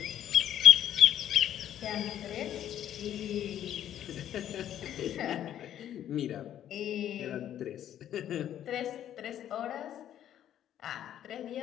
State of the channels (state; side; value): quieter; right; 11.0 dB